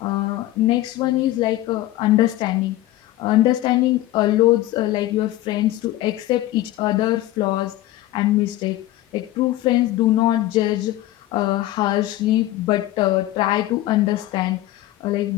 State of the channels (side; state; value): right; quieter; 15.6 dB